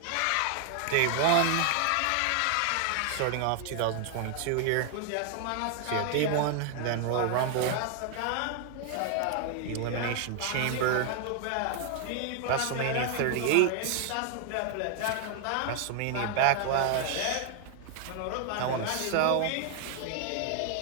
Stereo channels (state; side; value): different; both; correlation 0.00